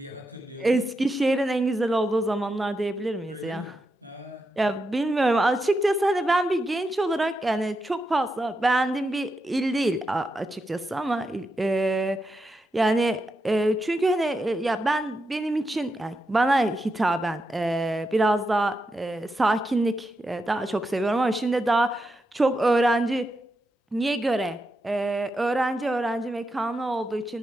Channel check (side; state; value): both; normal; correlation 0.86